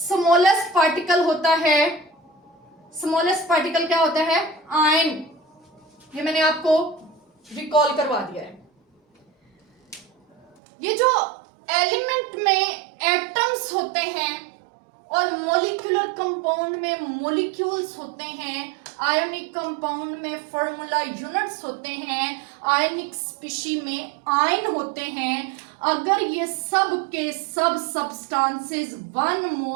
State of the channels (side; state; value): left; drops out; at 10.6 s